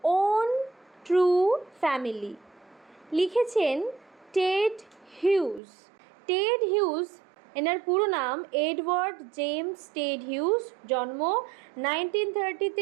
ওন ট্রু ফ্যামিলি, লিখেছেন টেড হিউজ। টেড হিউজ, এনার পুরো নাম এডওয়ার্ড জেমস টেড হিউজ, জন্ম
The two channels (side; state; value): left; drops out; at 5.6 s